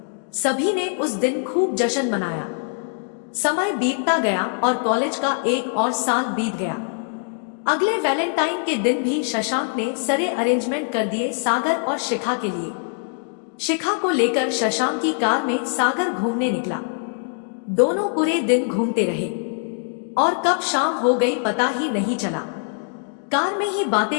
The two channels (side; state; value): right; silent; 57 dB below the other